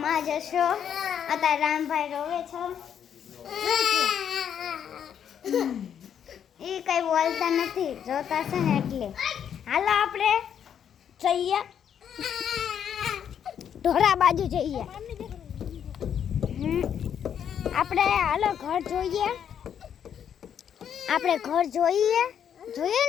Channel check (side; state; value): right; quieter; 8.7 dB